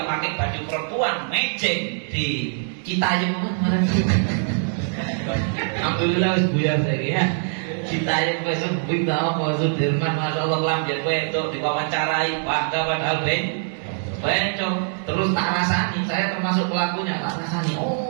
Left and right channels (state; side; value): silent; left; 59 dB below the other